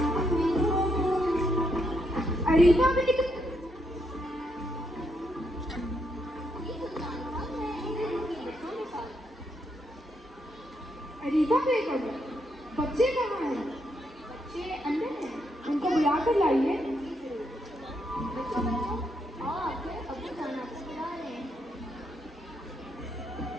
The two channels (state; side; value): normal; both; correlation 0.78